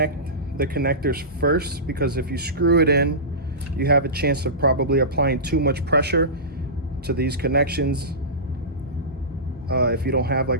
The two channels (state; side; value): normal; both; correlation -0.20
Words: the connectors first, because if you screw it in, you have a chance of probably applying too much pressure to these connections if you don't have like